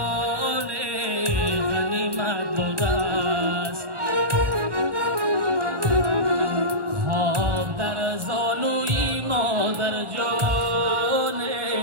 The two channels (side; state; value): left; late; 1.2 ms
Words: غنیمت بوده است خواب در زانوی مادر جان